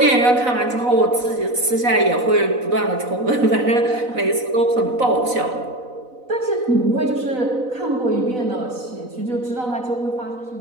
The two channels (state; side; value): late; left; 4.0 ms